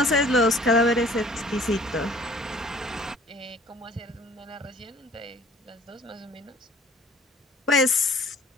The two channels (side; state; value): both; normal; correlation 0.53